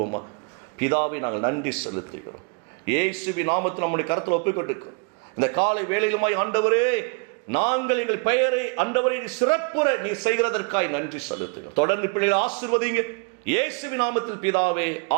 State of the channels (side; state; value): left; quieter; 34.8 dB